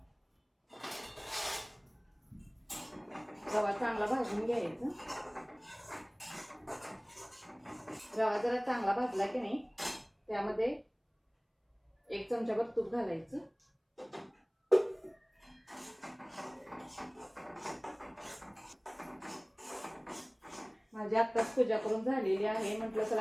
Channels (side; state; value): both; identical; correlation 1.00